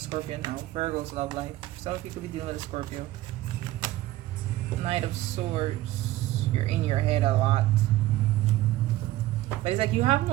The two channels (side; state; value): left; quieter; 15.9 dB